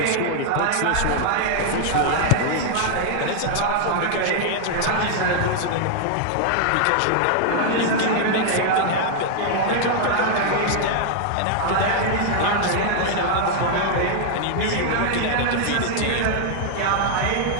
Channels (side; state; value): both; different; correlation 0.00